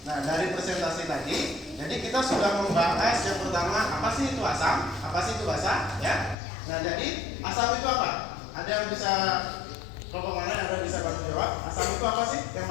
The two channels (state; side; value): drops out; right; at 6.4 s